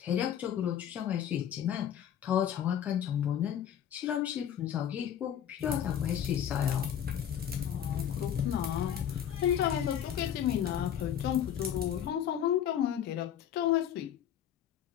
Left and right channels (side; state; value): right; quieter; 9.7 dB